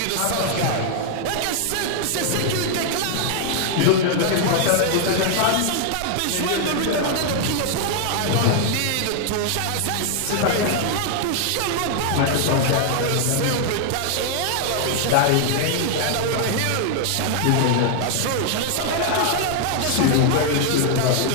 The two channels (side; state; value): both; different; correlation 0.00